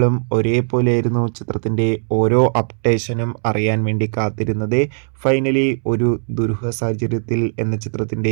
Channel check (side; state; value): left; silent; 67 dB below the other